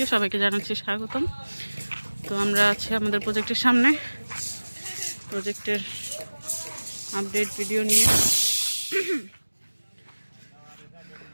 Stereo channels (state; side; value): inverted; both; correlation -1.00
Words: সবাইকে জানাচ্ছি স্বাগতম। তো আমরা আছি আমাদের প্রজেক্টের সামনে, প্রজেক্টের আপডেট ভিডিও নিয়ে।